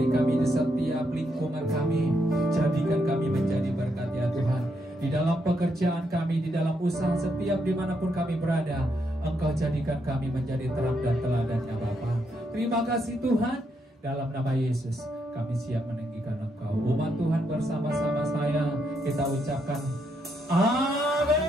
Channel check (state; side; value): normal; both; correlation 0.78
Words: kami di setiap lingkungan kami, jadikan kami menjadi berkat ya Tuhan. Di dalam pekerjaan kami, di dalam usaha, setiap dimanapun kami berada, Engkau jadikan kami menjadi terang dan teladan ya Bapa. Terima kasih Tuhan. Dalam nama Yesus kami siap meninggikan Engkau. Umat Tuhan bersama-sama saya kita ucapkan